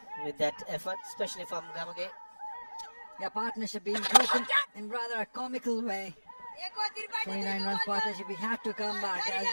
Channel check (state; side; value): inverted; both; correlation -1.00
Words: with that effort, especially from Gamage. Yeah, partnership being broken in rather a comical way. 29 runs partnership, we had to come back, as